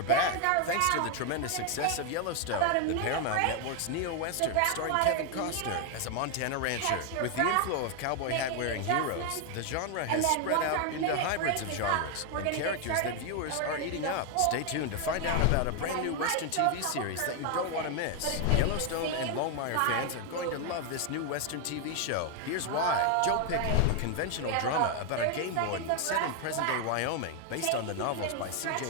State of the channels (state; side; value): different; both; correlation 0.01